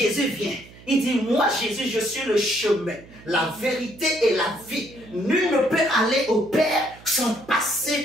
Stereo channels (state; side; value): noise; right; hum, 22 dB below the sound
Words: vient. Il dit, moi Jésus, je suis le chemin, la vérité et la vie. Nul ne peut aller au Père sans